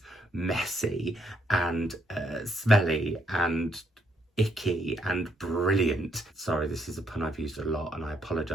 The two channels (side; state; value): both; normal; correlation 0.74